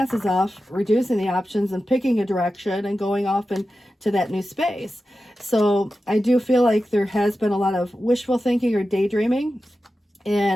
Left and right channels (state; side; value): normal; both; correlation 0.92